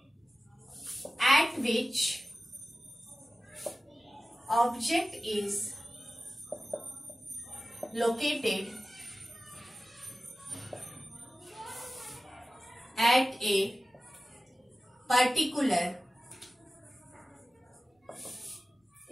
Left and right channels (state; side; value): normal; both; correlation 0.95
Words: at which object is located at a particular